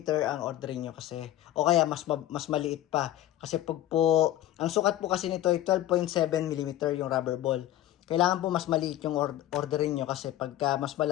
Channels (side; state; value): right; quieter; 13.6 dB